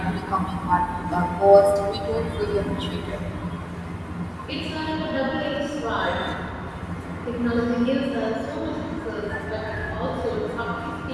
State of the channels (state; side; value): identical; both; correlation 1.00